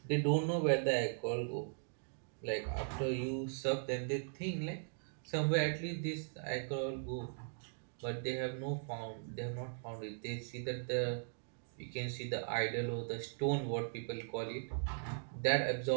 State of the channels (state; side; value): silent; left; digital silence